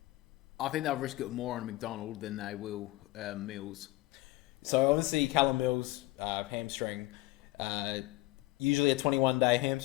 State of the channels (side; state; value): right; quieter; 19.9 dB